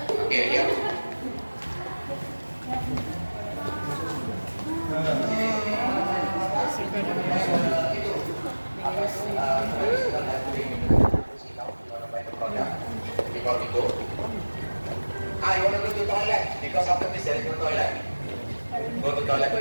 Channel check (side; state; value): both; inverted; correlation -1.00